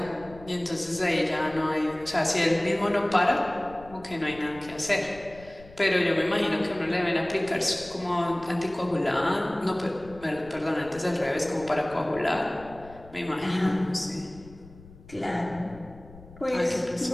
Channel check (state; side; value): noise; left; rumble, 20 dB below the sound